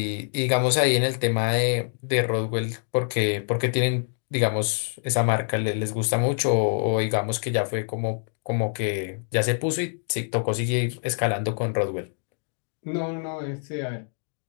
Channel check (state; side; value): silent; right; 61 dB below the other